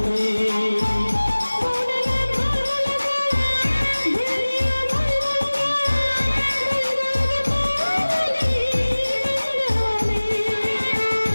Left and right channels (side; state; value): both; inverted; correlation -1.00